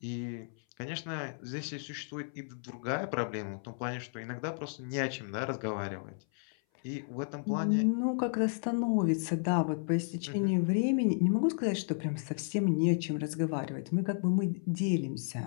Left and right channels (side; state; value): right; silent; 56 dB below the other